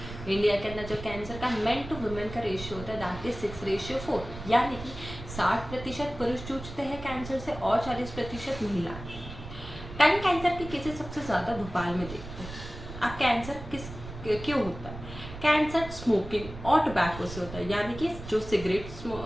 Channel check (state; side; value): noise; right; rumble, 12 dB below the sound